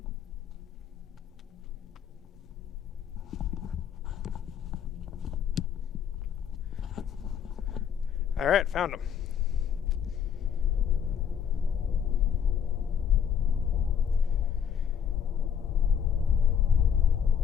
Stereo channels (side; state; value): right; quieter; 8.1 dB